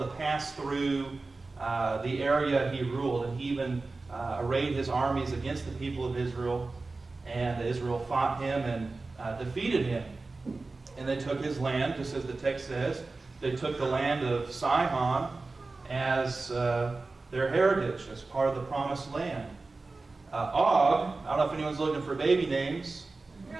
pass through the area he ruled, and he even arrayed his armies against the people of Israel, and Israel fought him and defeated him. And they took his land, just as the text says. They took the land of Sihon as their heritage, as part of the promised land. Og, I don't know if anyone's looking for baby names.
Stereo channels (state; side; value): quieter; left; 3.6 dB